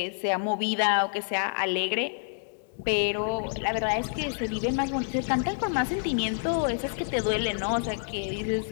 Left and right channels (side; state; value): right; silent; digital silence